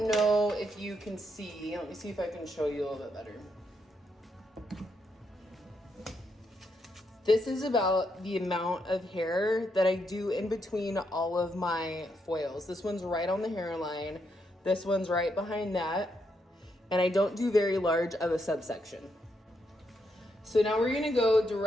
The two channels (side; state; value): both; normal; correlation 0.79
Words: know if you can see, let me see if I can show you a little bit better. This is about the amount of hair that I do in between all of my foils. This one's right on the hairline. This one's right behind that. And I don't do very large of a subsection. So now we're gonna go